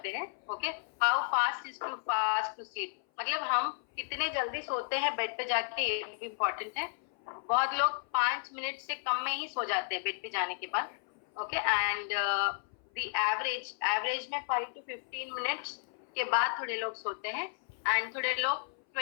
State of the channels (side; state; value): right; silent; 56 dB below the other